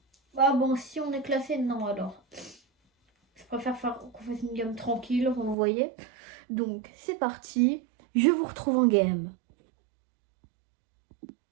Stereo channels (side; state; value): left; drops out; at 5.6 s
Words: Ah bon, si on est classé, non alors. Je préfère qu'on fasse une game tranquille, vous voyez. Donc c'est parti. Je vous retrouve en game.